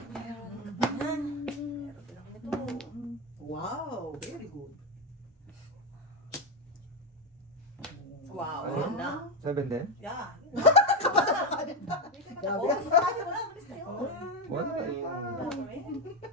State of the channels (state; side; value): normal; both; correlation 0.11